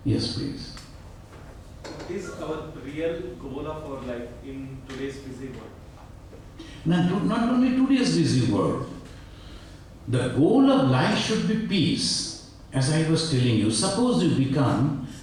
Yes, please. What is our real goal of our life in today's busy world? Not only today's busy world, the goal of life should be peace. As I was telling you, suppose you become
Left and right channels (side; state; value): both; identical; correlation 1.00